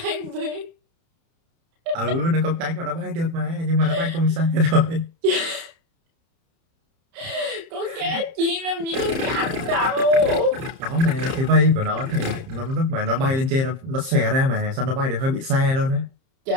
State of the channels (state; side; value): late; left; 30 ms